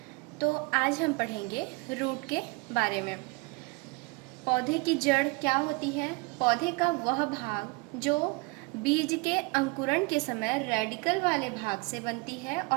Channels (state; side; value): quieter; left; 26.9 dB